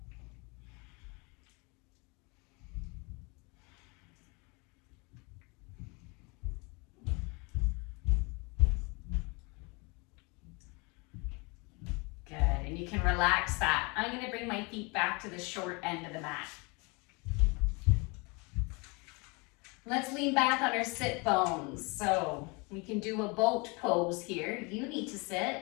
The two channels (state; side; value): quieter; right; 29.2 dB